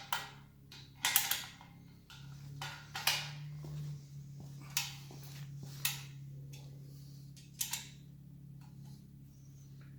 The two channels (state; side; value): identical; both; correlation 1.00